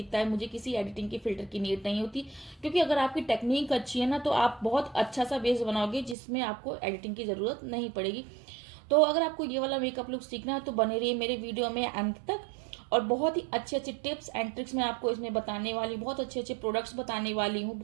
है। मुझे किसी एडिटिंग के फिल्टर की नीड नहीं होती, क्योंकि अगर आपकी टेक्निक अच्छी है ना तो आप बहुत अच्छा सा बेस बनाओगे जिसमें आपको एडिटिंग की जरूरत नहीं पड़ेगी। तो अगर आपको ये वाला मेकअप लुक सीखना है तो बने रहिए मेरे वीडियो में अंत तक। और बहुत ही अच्छे अच्छे टिप्स एंड ट्रिक्स मैं आपको इसमें बताने वाली, बहुत अच्छे अच्छे प्रोडक्ट्स बताने वाली हूँ,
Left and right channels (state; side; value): drops out; left; at 6.2 s